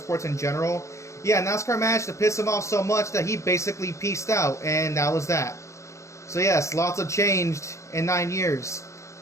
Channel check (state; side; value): late; right; 0.14 ms